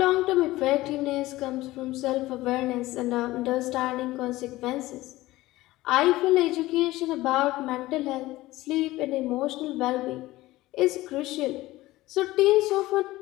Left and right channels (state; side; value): quieter; right; 17.8 dB